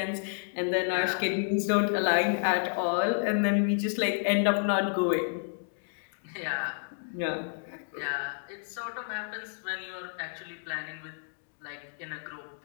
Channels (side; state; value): right; silent; digital silence